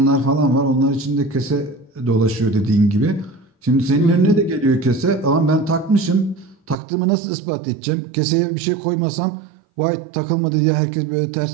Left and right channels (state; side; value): drops out; left; at 6.8 s